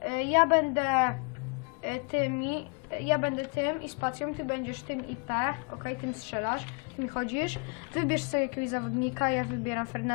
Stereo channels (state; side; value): quieter; right; 35.0 dB